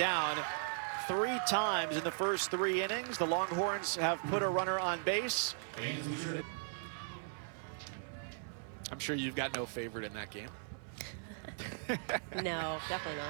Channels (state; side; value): silent; left; 53 dB below the other